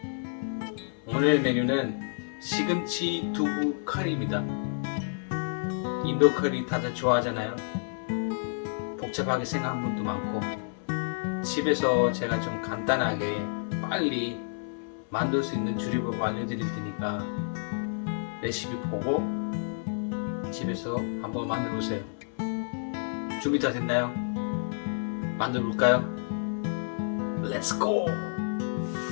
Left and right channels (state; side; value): silent; right; 58 dB below the other